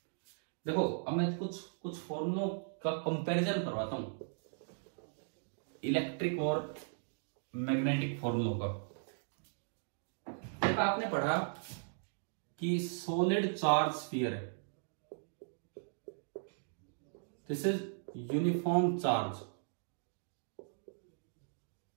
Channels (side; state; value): left; silent; digital silence